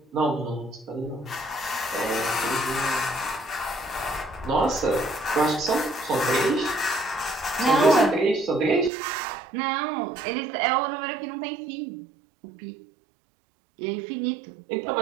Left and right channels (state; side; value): drops out; left; at 8.9 s